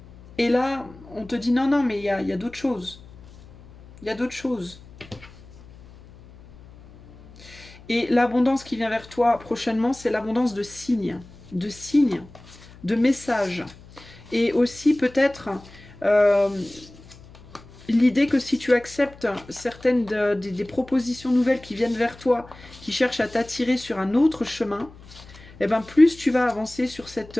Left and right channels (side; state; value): left; noise; hum, 21 dB below the sound